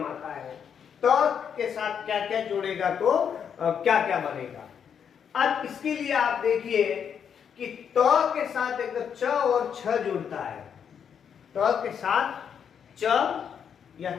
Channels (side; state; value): right; quieter; 7.7 dB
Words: आता है। त के साथ क्या क्या जोड़ेगा तो क्या क्या बनेगा। अब इसके लिए आप देखिए कि त के साथ एक च और छ जुड़ता है, त के साथ च या